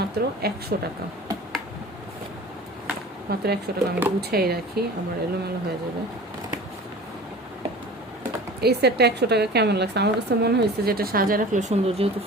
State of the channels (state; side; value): normal; both; correlation 0.40